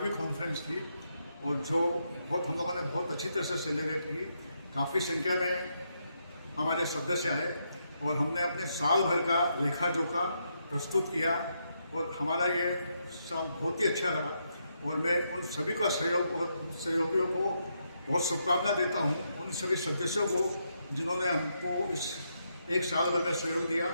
कॉन्फ्रेंस थी और जो हम लोगों ने बहुत अच्छी तरह से सेलिब्रेट की। काफ़ी संख्या में हमारे सदस्य आए और हमने अपने साल भर का लेखा जोखा प्रस्तुत किया और हमारा ये साल बहुत ही अच्छा रहा। और मैं उन सभी का सहयोग और सहयोगियों को बहुत शुभकामना देता हूँ, उन सभी सदस्यों को जिन्होंने हमको इस एक साल भर में सहयोग दिया,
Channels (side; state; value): both; inverted; correlation -0.80